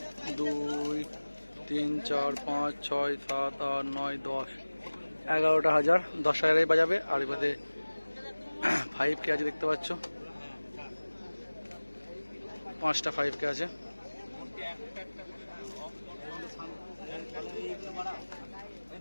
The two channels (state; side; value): inverted; both; correlation -1.00